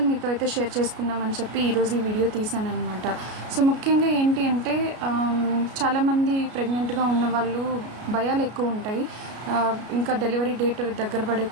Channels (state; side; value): late; left; 33 ms